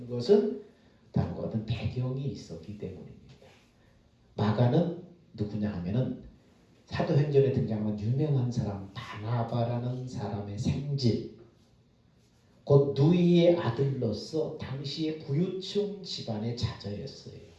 것은 다음과 같은 배경이 있었기 때문입니다. 마가는 누구냐 하면은 사도행전에 등장하는 유명한 사람 바나바라는 사람의 생질, 곧 누이의 아들로서 당시의 부유층 집안의 자녀였어요.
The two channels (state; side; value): identical; both; correlation 1.00